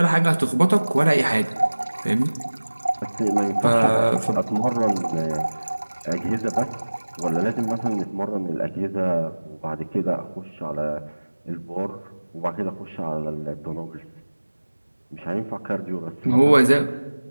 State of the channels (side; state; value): both; inverted; correlation -1.00